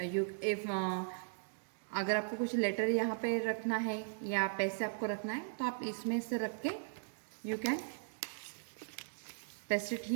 you if अगर आपको कुछ लेटर यहाँ पे रखना है या पैसे आपको रखना है तो आप इसमें से रख के you can paste it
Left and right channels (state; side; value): silent; left; digital silence